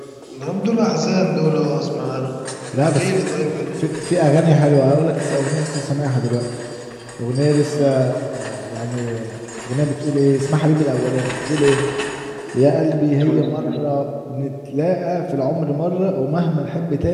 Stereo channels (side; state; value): both; identical; correlation 1.00